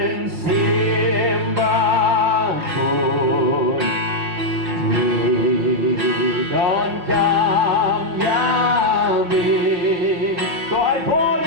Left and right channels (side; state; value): left; late; 5.4 ms